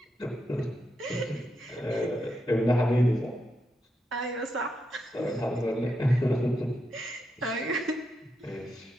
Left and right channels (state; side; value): normal; both; correlation 0.84